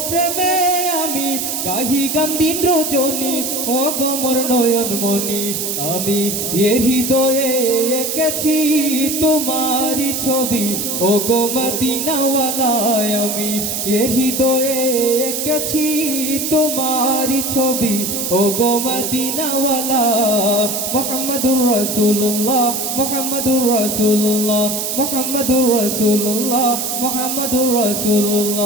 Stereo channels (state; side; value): noise; right; hiss, 2 dB below the sound